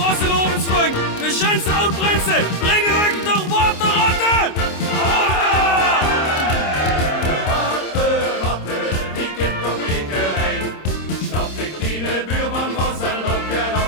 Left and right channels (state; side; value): late; right; 26 ms